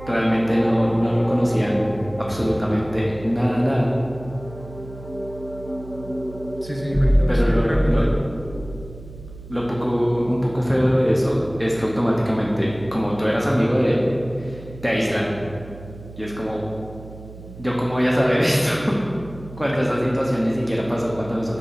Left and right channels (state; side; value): noise; right; hum, 16 dB below the sound